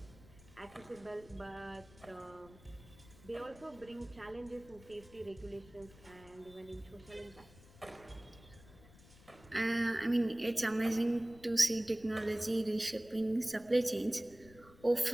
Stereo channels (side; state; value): left; noise; rumble, 22 dB below the sound